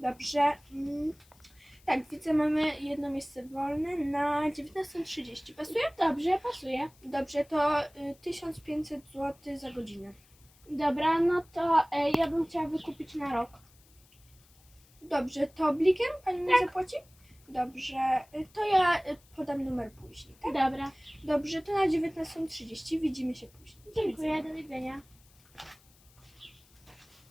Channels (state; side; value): noise; left; hiss, 29 dB below the sound